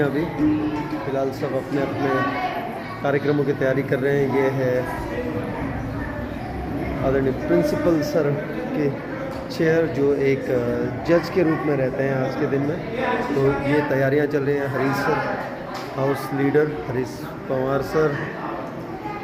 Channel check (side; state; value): both; identical; correlation 1.00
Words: अभी फ़िलहाल। सब अपने अपने कार्यक्रमों की तैयारी कर रहे हैं। ये है आदरणीय प्रिंसिपल सर के चेयर, जो एक जज के रूप में रहते हैं आज के दिन में। तो ये तैयारियां चल रही हैं। Harish sir, house leader Harish Pawar